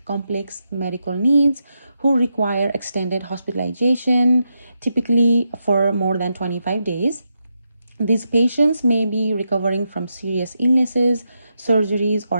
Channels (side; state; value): both; inverted; correlation -0.84